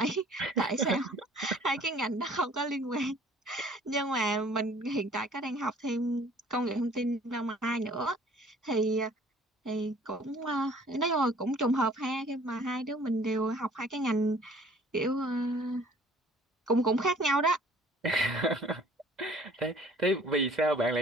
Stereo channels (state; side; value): normal; both; correlation 0.54